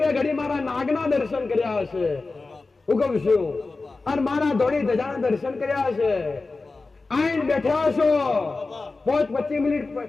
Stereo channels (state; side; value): quieter; right; 3.7 dB